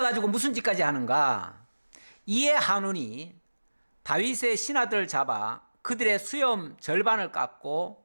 무슨 짓까지 하는가? 이에 한운이 다윗의 신하들을 잡아 그들의 수염 절반을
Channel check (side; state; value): both; inverted; correlation -1.00